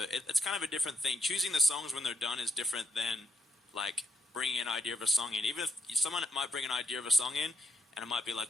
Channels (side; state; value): both; normal; correlation 0.78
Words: it's kind of a different thing. Choosing the songs when they're done is different than like bringing an idea of a song in. Even if someone might bring an idea of a song in, and it might be like